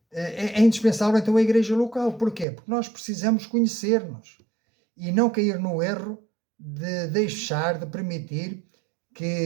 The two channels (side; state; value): left; drops out; at 2.5 s